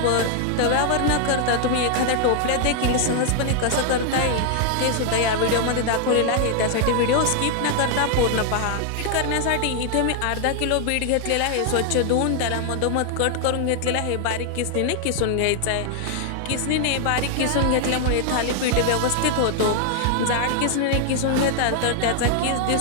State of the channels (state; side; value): different; both; correlation 0.00